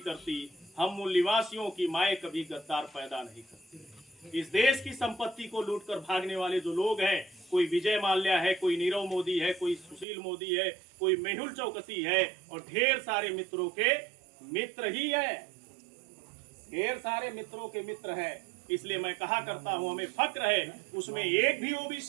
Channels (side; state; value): left; drops out; at 10.1 s